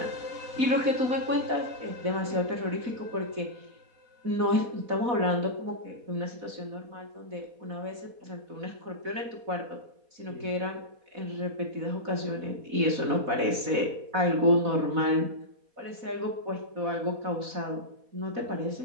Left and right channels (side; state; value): left; late; 4.0 ms